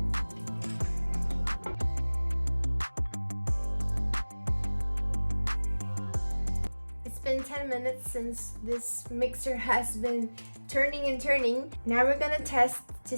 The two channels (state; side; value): inverted; both; correlation -1.00